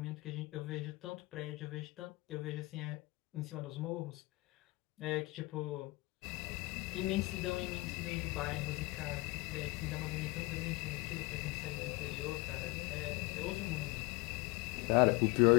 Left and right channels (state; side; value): quieter; right; 22.9 dB